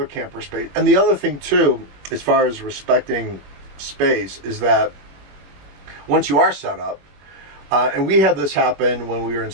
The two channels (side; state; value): left; late; 21 ms